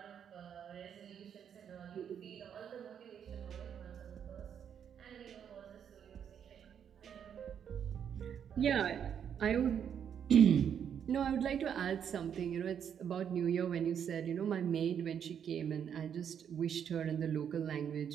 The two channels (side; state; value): left; quieter; 8.3 dB